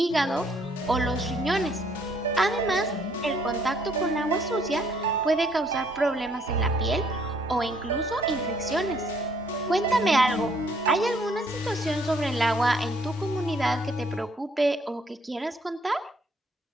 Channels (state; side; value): normal; both; correlation 0.65